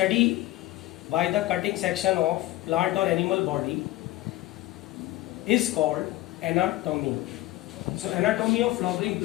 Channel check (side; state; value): right; quieter; 17.0 dB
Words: by the cutting section of plant or animal body is called anatomy. So anatomy of flowering